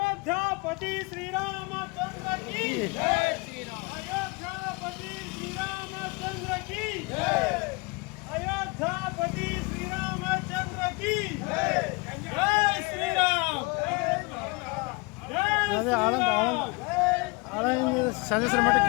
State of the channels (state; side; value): quieter; right; 27.3 dB